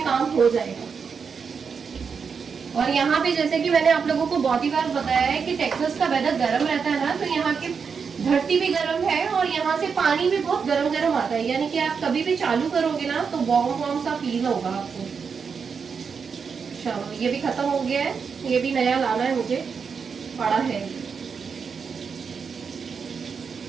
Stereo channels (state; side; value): quieter; left; 5.9 dB